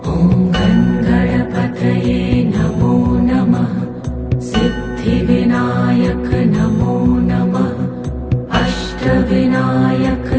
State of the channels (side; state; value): both; identical; correlation 1.00